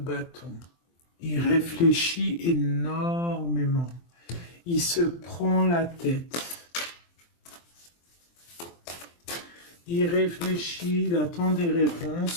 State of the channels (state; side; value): late; right; 23 ms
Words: Il réfléchit énormément. Il se prend la tête. Il réfléchit, il attend des